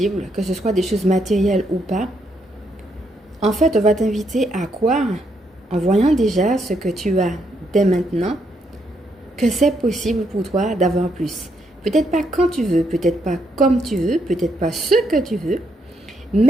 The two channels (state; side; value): normal; both; correlation 0.76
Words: que ce soit des choses matérielles ou pas. En fait, on va t'inviter à croire, en voyant déjà ce que tu as dès maintenant, que c'est possible pour toi d'avoir plus. Peut-être pas quand tu veux, peut-être pas comme tu veux, peut-être pas ce que tu veux,